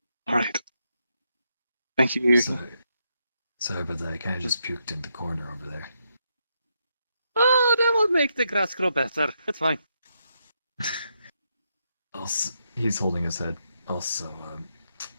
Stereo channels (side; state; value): both; inverted; correlation -0.81